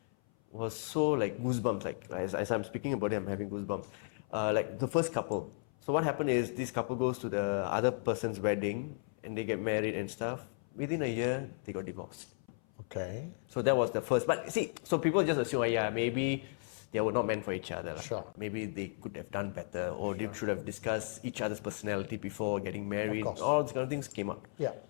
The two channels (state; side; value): silent; right; 55 dB below the other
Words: was so like goosebumps. Like as I'm speaking about it, I'm having goosebumps. Like the first couple. So what happened is this couple goes to the other person's wedding and they get married and stuff. Within a year, they got divorced. Okay. So that was the first. But see, so people just assume, maybe they were not meant for each other. Sure. Maybe they could have done better, or they should have discussed each other's personality before getting married. Of course. All these kind of things came up. Yeah.